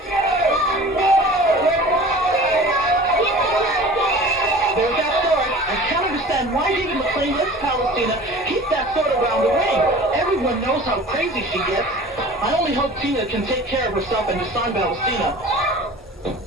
There's that sword. I can't understand why David McClain lets Palestina keep that sword around the ring. Everyone knows how crazy she gets. I only hope Tina can take care of herself and disarm Palestina.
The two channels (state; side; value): normal; both; correlation 0.42